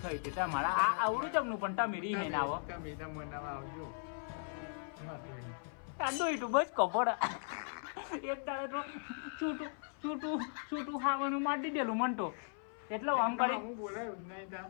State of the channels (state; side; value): silent; right; 53 dB below the other